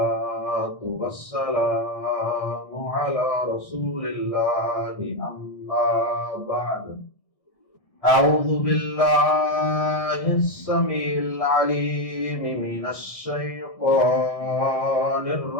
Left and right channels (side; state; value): right; late; 1.6 ms